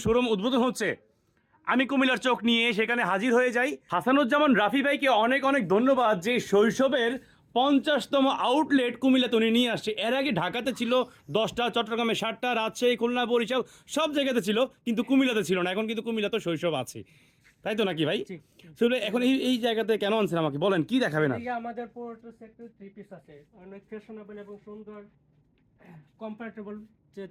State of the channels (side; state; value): both; identical; correlation 1.00